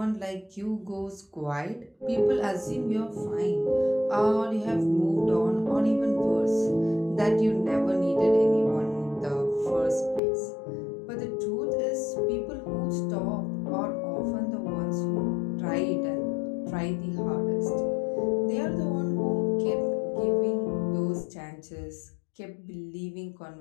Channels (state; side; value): drops out; right; at 10.2 s